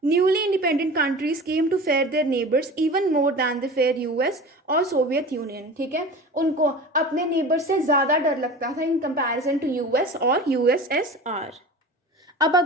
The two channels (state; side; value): normal; both; correlation 0.35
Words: newly independent countries came to fear their neighbours even more than the fear US और सोवियत यूनियन, ठीक है, उनको अपने नेबर से ज़्यादा डर लगता था इन कंपैरिजन टू यूएस और यूएसएसआर। अब